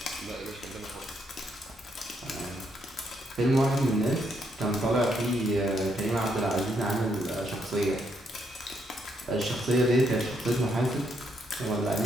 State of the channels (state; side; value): normal; both; correlation 0.75